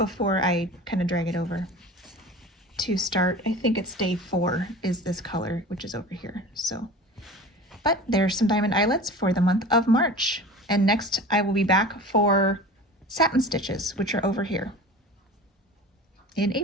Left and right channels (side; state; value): both; normal; correlation 0.37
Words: I kind of drag it over to start, I think it's day 4 is this color, which is over here. So, but there's some diamond eyelets for the month of March. And next I will be back for satin stitches, which are over here in